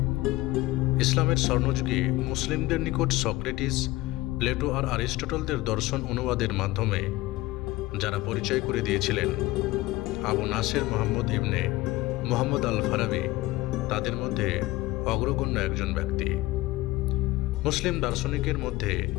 ইসলামের স্বর্ণযুগে মুসলিমদের নিকট সক্রেটিস, প্লেটো আর অ্যারিস্টটলদের দর্শন অনুবাদের মাধ্যমে যারা পরিচয় করে দিয়েছিলেন, আবু নাসের মোহাম্মদ ইবনে মোহাম্মদ আল ফারাবি তাদের মধ্যে অগ্রগণ্য একজন ব্যক্তি। মুসলিম দার্শনিকের মধ্যে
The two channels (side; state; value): right; quieter; 19.2 dB